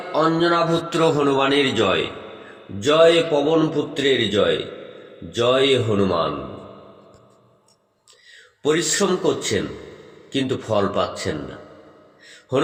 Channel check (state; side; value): identical; both; correlation 1.00